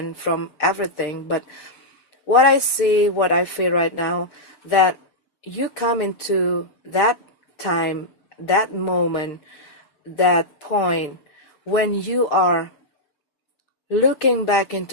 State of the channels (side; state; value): right; late; 6.7 ms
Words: from everything. But what I see, what I feel right now, that you come into that time, that moment, that point when you are looking back